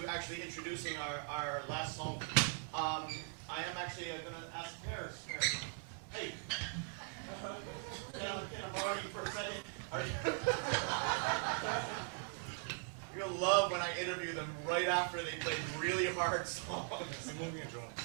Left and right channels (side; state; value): left; silent; 51 dB below the other